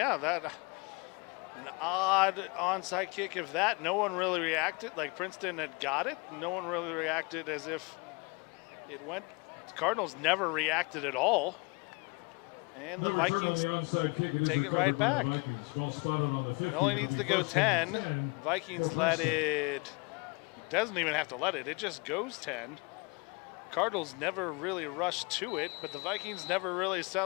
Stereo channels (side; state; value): right; quieter; 29.5 dB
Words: that an odd onside kick. If that, no one really reacted. Like Princeton had got it. No one really reacted as if it went. Cardinals never reacted at all. And the Vikings take it right back. It only needs to go 10. Vikings let it. Doesn't even have to let it. It just goes 10. Cardinals never really rushed to it, but the Vikings never really